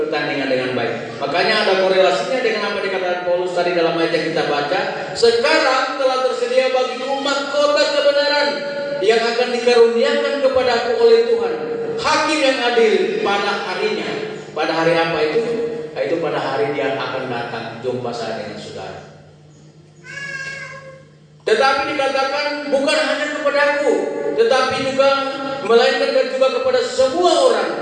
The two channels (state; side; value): identical; both; correlation 1.00